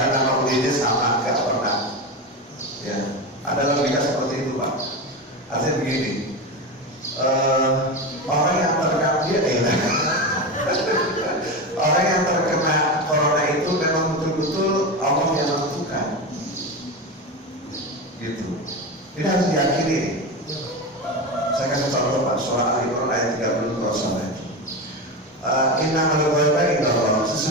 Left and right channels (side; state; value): both; normal; correlation 0.20